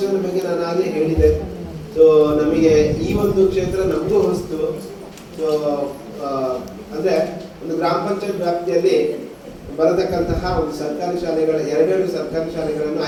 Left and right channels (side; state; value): both; identical; correlation 1.00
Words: ಬಗ್ಗೆ ನಾನು ಆಗಲೇ ಹೇಳಿದೆ. ಸೊ ನಮಗೆ ಈ ಒಂದು ಕ್ಷೇತ್ರ ನಮಗೂ ಹೊಸ್ತು. ಸೊ ಅಂದ್ರೆ ಒಂದು ಗ್ರಾಮ ಪಂಚಾಯತ್ ವ್ಯಾಪ್ತಿಯಲ್ಲಿ ಬರತಕ್ಕಂತಹ ಒಂದು ಸರ್ಕಾರಿ ಶಾಲೆಗಳ 2 ಸರ್ಕಾರಿ ಶಾಲೆಗಳನ್ನು